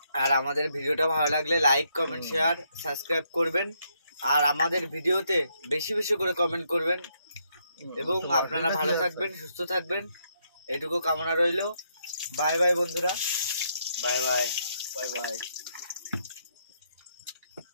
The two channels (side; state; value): both; inverted; correlation -0.76